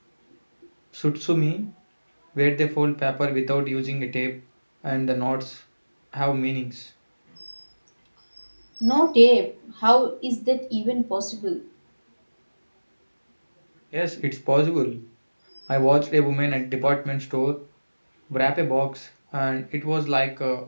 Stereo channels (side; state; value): both; inverted; correlation -1.00